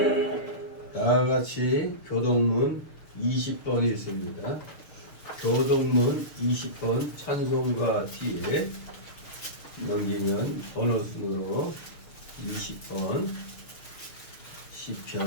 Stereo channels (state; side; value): late; right; 6.8 ms